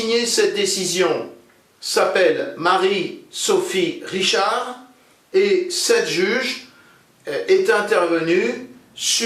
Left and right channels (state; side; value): identical; both; correlation 1.00